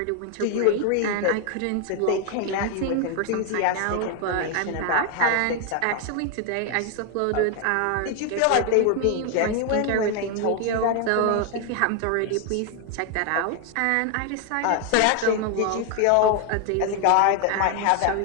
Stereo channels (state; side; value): different; both; correlation 0.01